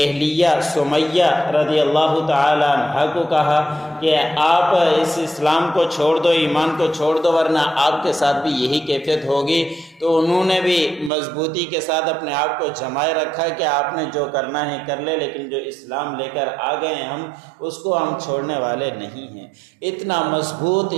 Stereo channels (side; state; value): left; drops out; at 11.1 s